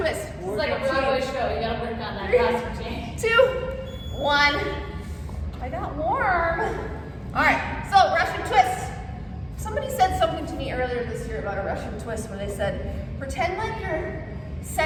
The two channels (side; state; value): both; identical; correlation 1.00